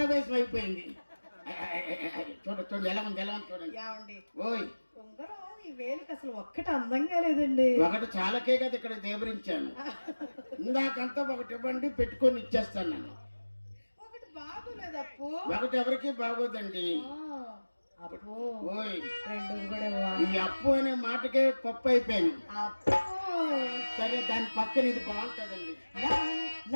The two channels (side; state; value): both; inverted; correlation -1.00